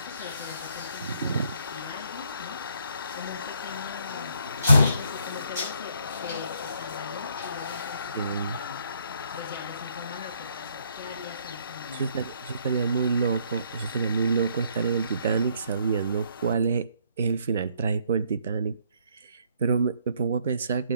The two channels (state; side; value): inverted; both; correlation -0.68